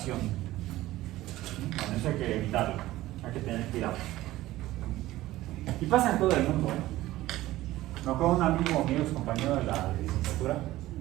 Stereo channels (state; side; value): quieter; left; 16.3 dB